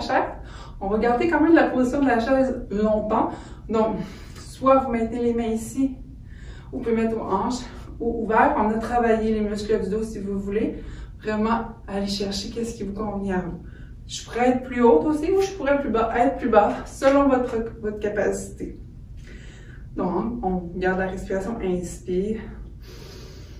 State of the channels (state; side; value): identical; both; correlation 1.00